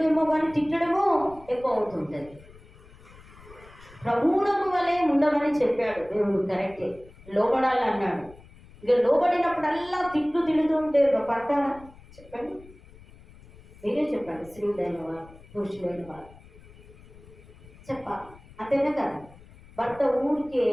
కానీ తిట్టడమో ఎక్కువ అవుతుంటుంది. ప్రభువునకు వలె ఉండమని చెప్పాడు దేవుడు, కరెక్టే, లోబడాలి అన్నాడు. ఇక లోబడినప్పుడల్లా తిడుతుంటే పడతారా? చెప్పండి, మీరే చెప్పండి. స్త్రీలైన వారు, పురుషులైన వారు చెప్పాలి, అంతేనా కదా? భర్త ఊరికే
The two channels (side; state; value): left; noise; rumble, 22 dB below the sound